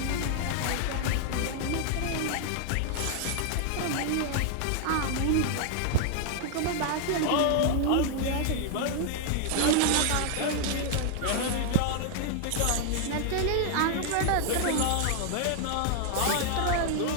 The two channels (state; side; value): different; both; correlation 0.00